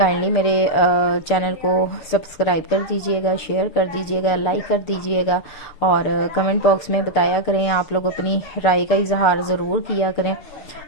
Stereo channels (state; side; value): late; right; 6.8 ms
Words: मेरे चैनल को सब्सक्राइब कर दीजिएगा, शेयर कर दीजिएगा, लाइक कर दीजिएगा, और कमेंट बॉक्स में बताया करें, आप लोग अपनी राय का इजहार ज़रूर किया करें।